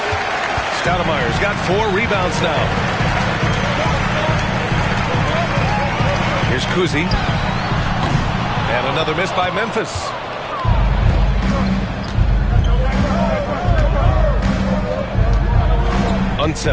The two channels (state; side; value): identical; both; correlation 1.00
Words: Stoudemire's got 4 rebounds now. Here's Kuzi. And another miss by Memphis.